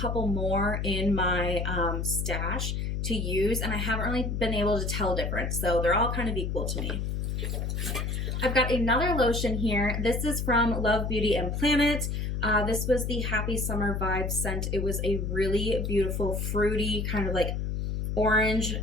more in my stash to use, and I haven't really been able to tell difference. So they're all kind of equal to me. I've got another lotion here. This is from Love Beauty and Planet. This was the Happy Summer Vibe scent. It was a really beautiful, fruity, kind of like orange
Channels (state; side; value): noise; left; hum, 1 dB below the sound